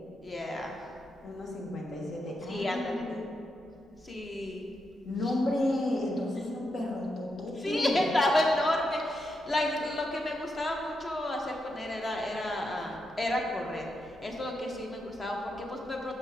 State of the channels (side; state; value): both; normal; correlation 0.84